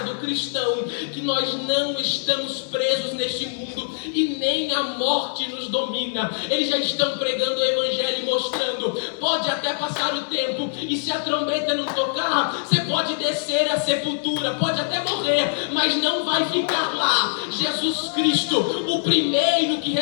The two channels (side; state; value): right; silent; 58 dB below the other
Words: do cristão, que nós não estamos presos neste mundo e nem a morte nos domina. Eles já estão pregando o evangelho e mostrando, pode até passar o tempo, e se a trombeta não tocar, você pode descer à sepultura, pode até morrer, mas não vai ficar lá. Jesus Cristo, o primeiro que